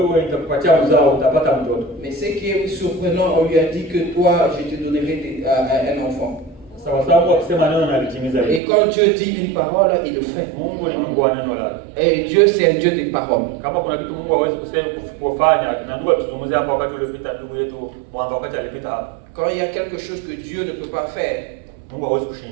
Mais ce qui est surprenant, on lui a dit que toi, je te donnerai un enfant. Et quand Dieu dit une parole, il le fait. Et Dieu, c'est un Dieu des paroles. Quand il y a quelque chose que Dieu ne peut pas faire,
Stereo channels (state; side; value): drops out; left; at 8.6 s